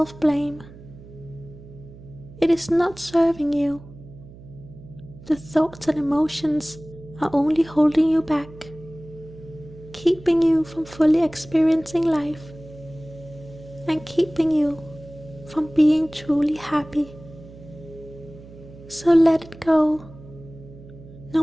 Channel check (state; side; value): noise; right; hum, 19 dB below the sound